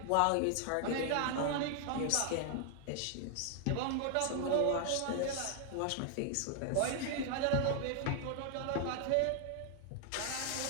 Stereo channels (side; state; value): both; different; correlation 0.00